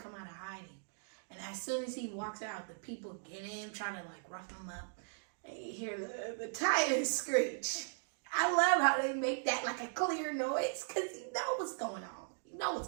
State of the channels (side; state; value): left; silent; digital silence